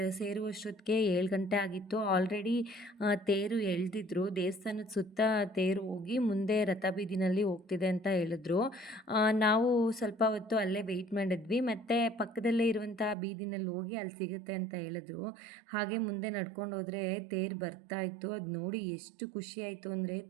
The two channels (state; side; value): drops out; left; at 13.2 s